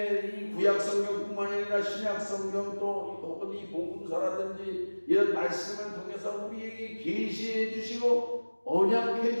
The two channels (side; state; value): both; inverted; correlation -1.00